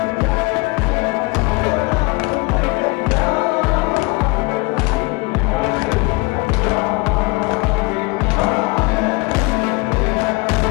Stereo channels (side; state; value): right; quieter; 25.7 dB